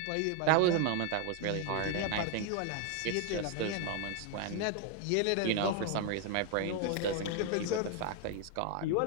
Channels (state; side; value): different; both; correlation 0.01